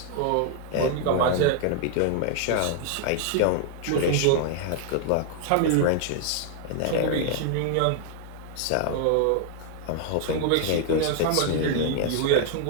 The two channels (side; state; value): both; different; correlation 0.00